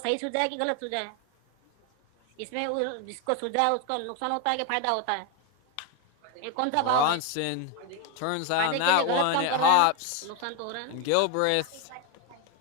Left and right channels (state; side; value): different; both; correlation 0.01